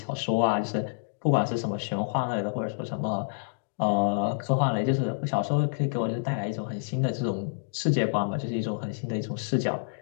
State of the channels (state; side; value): silent; right; digital silence